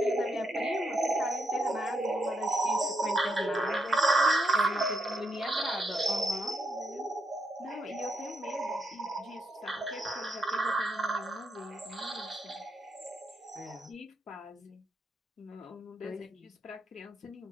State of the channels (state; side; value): normal; both; correlation 0.79